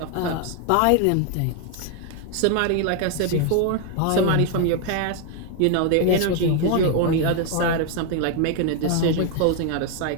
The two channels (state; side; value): different; both; correlation 0.01